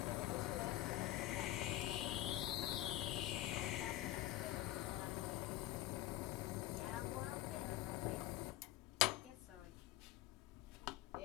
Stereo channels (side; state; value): right; quieter; 15.4 dB